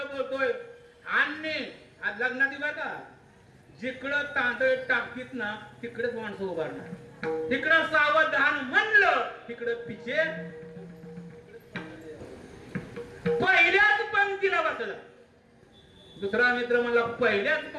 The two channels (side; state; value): both; identical; correlation 1.00